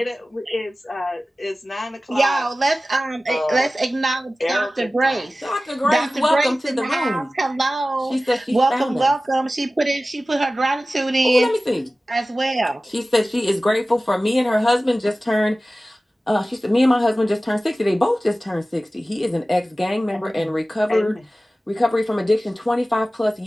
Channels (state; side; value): normal; both; correlation 0.96